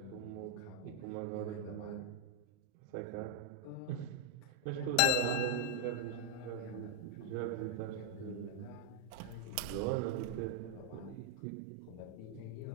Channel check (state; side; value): different; both; correlation 0.00